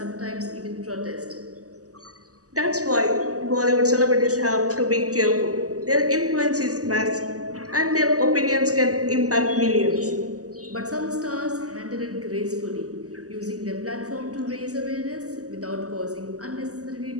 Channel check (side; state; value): left; late; 0.66 ms